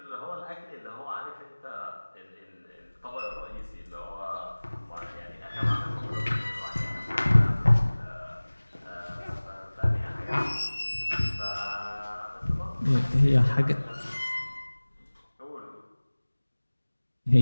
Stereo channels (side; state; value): both; inverted; correlation -1.00